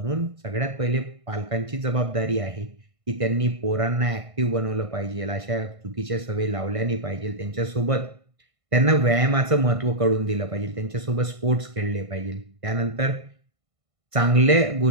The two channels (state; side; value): late; left; 1.5 ms